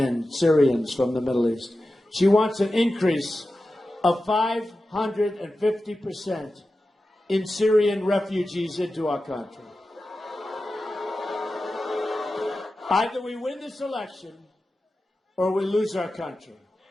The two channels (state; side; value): normal; both; correlation 0.93